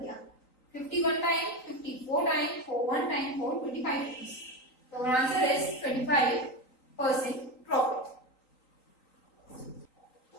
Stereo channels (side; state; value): right; late; 3.9 ms